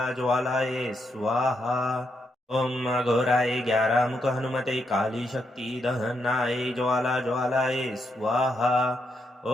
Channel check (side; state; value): both; normal; correlation 0.80